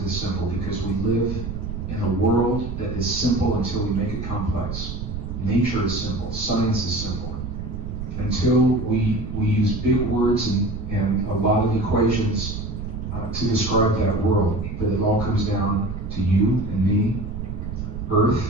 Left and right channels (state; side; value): noise; right; rumble, 6 dB below the sound